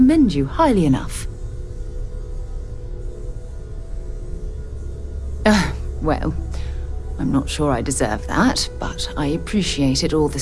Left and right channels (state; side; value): identical; both; correlation 1.00